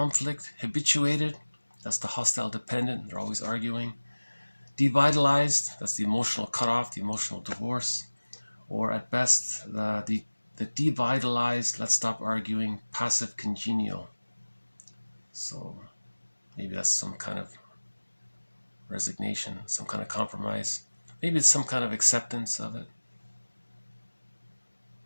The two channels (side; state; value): both; inverted; correlation -1.00